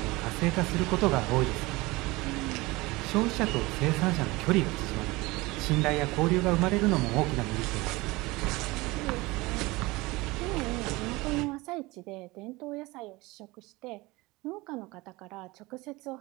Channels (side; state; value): left; quieter; 22.1 dB